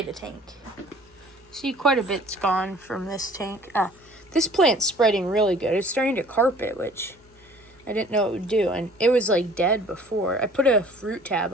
tank. See, quite a bit's gone from this tank. This plant's spreading really good. It's starting to carpet, which I didn't know it would do, and it was like dead before. I put a fruit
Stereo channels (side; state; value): both; normal; correlation 0.51